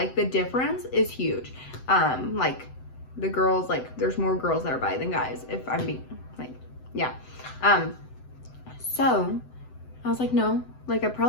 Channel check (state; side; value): late; right; 7.9 ms